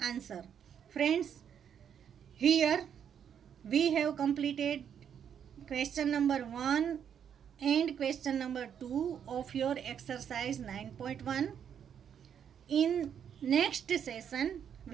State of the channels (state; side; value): quieter; left; 8.4 dB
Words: Friends, here we have completed question number 1 and question number 2 of your exercise 9.1. In next session